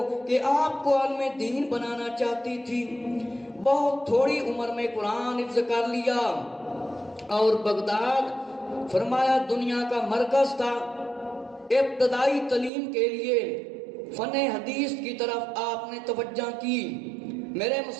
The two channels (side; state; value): left; drops out; at 12.7 s